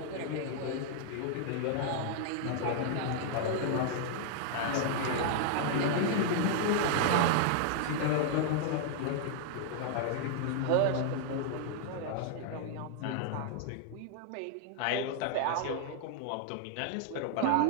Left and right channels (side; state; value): both; different; correlation -0.01